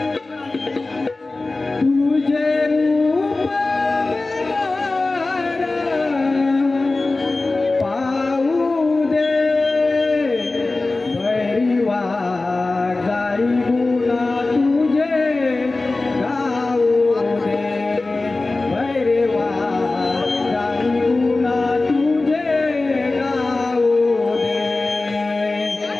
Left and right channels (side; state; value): right; quieter; 3.3 dB